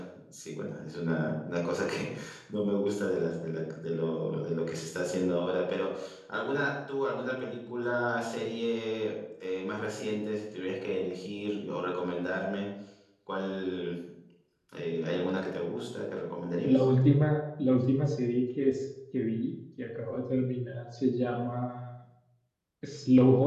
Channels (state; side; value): identical; both; correlation 1.00